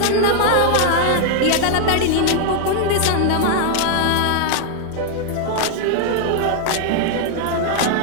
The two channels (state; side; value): different; both; correlation 0.00